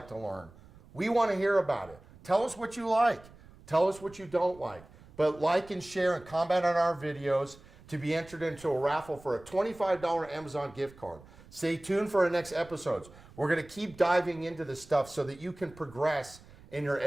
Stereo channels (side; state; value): right; noise; rumble, 22 dB below the sound